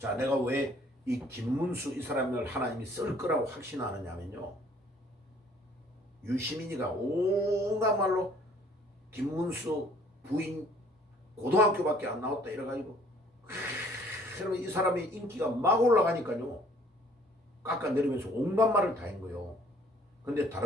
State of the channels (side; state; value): both; normal; correlation 0.58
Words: 내가 왜 이 김문수 이 사람을 하나님이 쓸 거라고 확신하느냐면요, 유시민이가 온갖 말로 김문수 부인 고등학교밖에 안 나왔다 이래가지고, 그러면 이 사람의 인기가 막 올라가니까요 깎아내리면서 온갖 말을 다 한 거예요. 근데